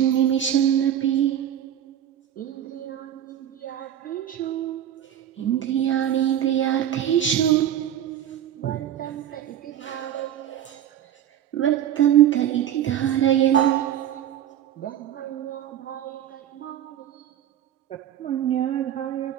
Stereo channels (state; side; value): quieter; left; 10.7 dB